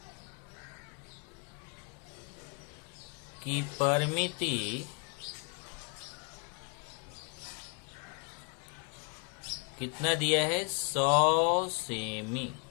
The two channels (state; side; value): quieter; right; 34.7 dB